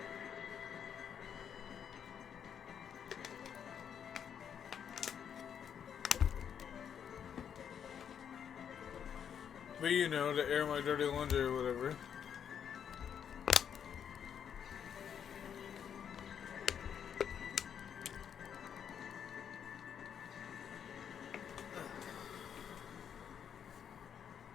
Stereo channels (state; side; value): quieter; right; 8.2 dB